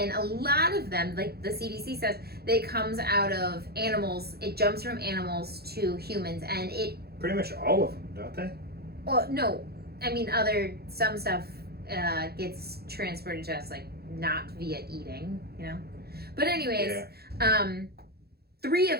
a lot of them, like the CDC says, they comes out of animals. It jumps from animals to humans, and it. Pretty much all of them, don't they? Well, no, I mean some stuff gets transported to us like not via eating, you know. But anyways, Yeah. 3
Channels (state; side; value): late; left; 0.46 ms